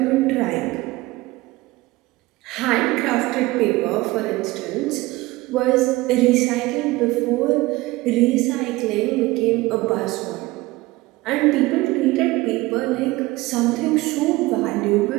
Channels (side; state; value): left; quieter; 20.1 dB